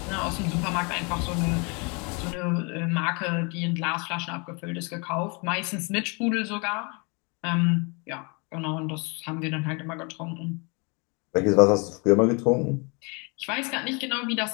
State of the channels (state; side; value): quieter; right; 32.0 dB